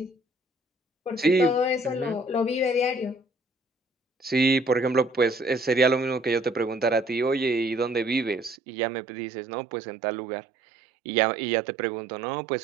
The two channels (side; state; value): left; drops out; at 8.6 s